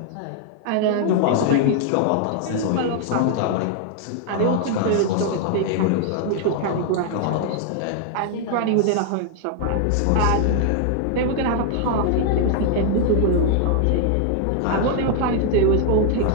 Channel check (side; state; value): both; different; correlation 0.00